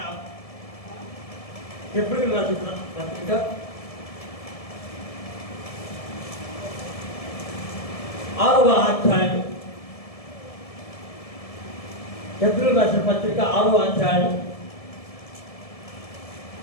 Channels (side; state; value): right; late; 1.7 ms